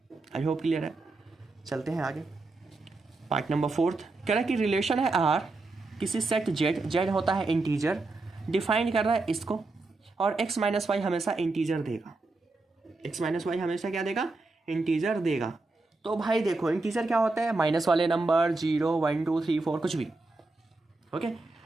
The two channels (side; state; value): left; quieter; 3.4 dB